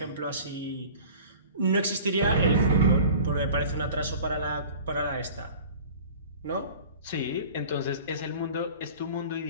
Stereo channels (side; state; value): both; inverted; correlation -0.43